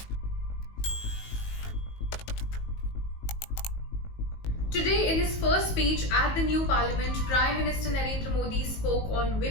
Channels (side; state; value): right; late; 19 ms